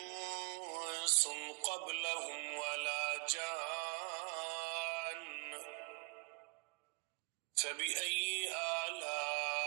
قبلهم ولا جان فبأي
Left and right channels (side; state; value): left; quieter; 31.9 dB